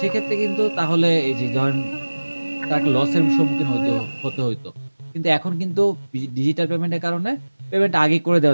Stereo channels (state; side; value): inverted; both; correlation -1.00